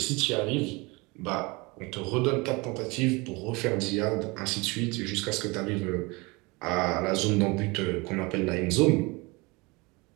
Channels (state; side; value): quieter; left; 25.8 dB